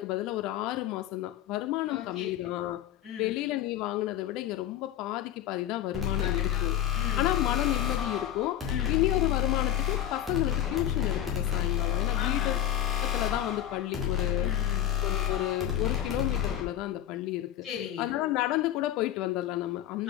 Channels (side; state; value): right; quieter; 11.7 dB